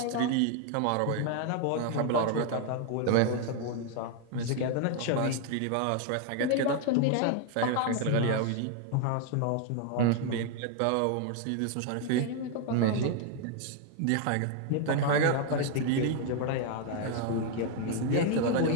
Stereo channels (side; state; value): both; different; correlation 0.00